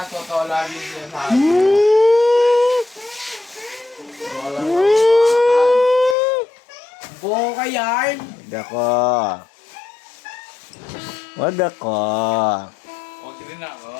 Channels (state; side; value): drops out; right; at 6.2 s